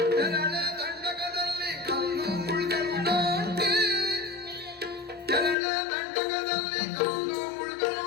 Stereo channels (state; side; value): drops out; right; at 5.6 s